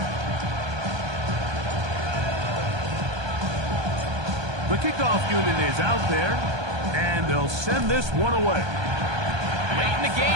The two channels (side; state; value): left; late; 1.2 ms